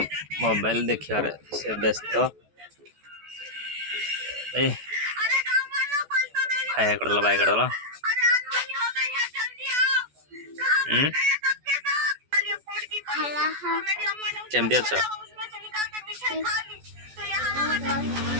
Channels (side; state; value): left; late; 14 ms